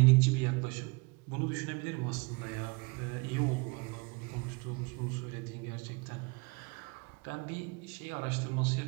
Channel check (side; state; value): left; quieter; 29.1 dB